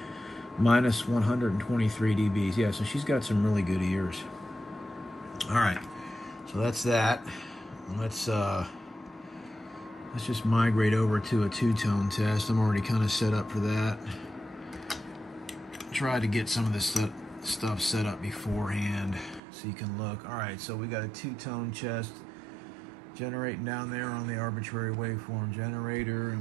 minus 123 dBs. Yeah, so she's got some really good ears. All right, so that's that. Let's just migrate over to a two-tone test. I'm already kind of set up for that. Try to get some of this stuff set up beforehand so you can look. All right, so we got a two-tone chest generating down there on the arbitrary waveform generator,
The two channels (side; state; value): left; drops out; at 19.4 s